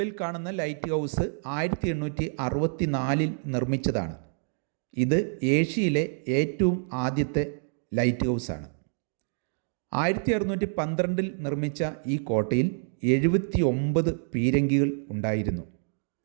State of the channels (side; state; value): left; silent; digital silence